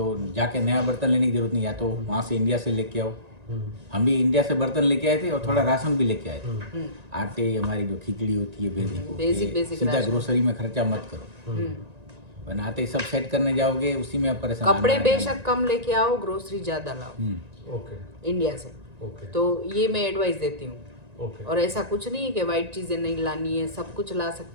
जाके नया बर्तन लेने की जरूरत नहीं, या तो वहाँ से इंडिया से लेके आओ। हम भी इंडिया से बर्तन लेके आए थे, और थोड़ा राशन भी लेके आए थे। आटे, हमारी जो खिचड़ी होती है बेसिक, सीधा ग्रोसरी में खर्चा मत करो। बनाते ही सब सेट करने जाओगे, उसी में परेशान। कपड़े बेशक कम लेके आओ, ग्रोसरी ज्यादा लाओ ओके इंडिया से। ओके। तो ये मैं एडवाइस देती हूँ। ओके। और ऐसा कुछ नहीं है कि वाइट चीजें नहीं लानी है, सब कुछ ला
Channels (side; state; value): left; late; 1.9 ms